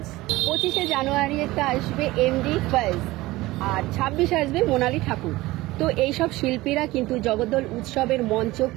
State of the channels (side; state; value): left; quieter; 19.0 dB